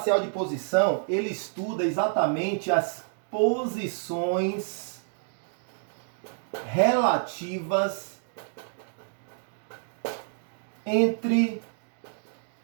de posição, ele estuda exatamente as posições relativas entre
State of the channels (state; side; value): silent; left; digital silence